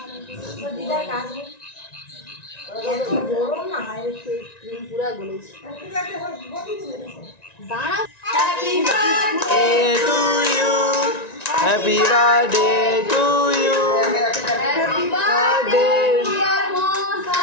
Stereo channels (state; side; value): late; right; 1.9 ms